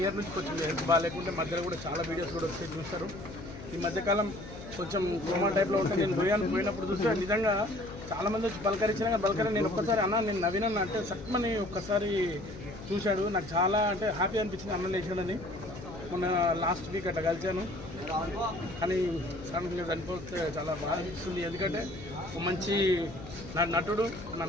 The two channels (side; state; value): left; noise; hum, 13 dB below the sound